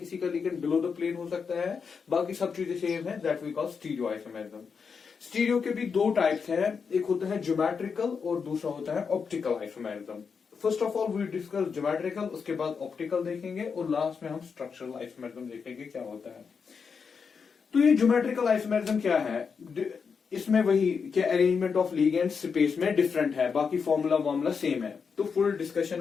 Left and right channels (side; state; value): right; quieter; 5.8 dB